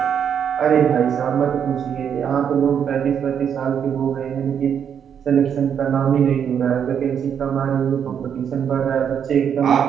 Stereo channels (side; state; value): left; quieter; 8.1 dB